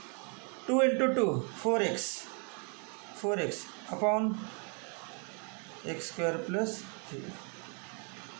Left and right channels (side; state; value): left; quieter; 38.3 dB